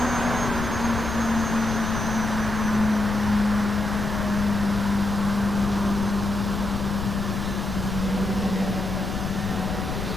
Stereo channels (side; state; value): left; noise; rumble, 6 dB below the sound